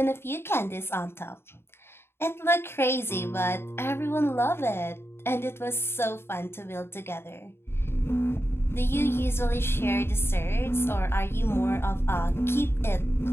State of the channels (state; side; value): late; right; 0.12 ms